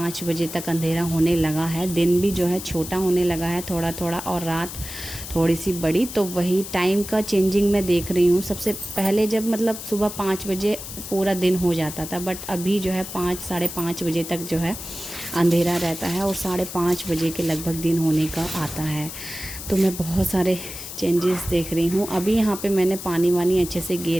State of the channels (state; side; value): noise; left; hiss, 10 dB below the sound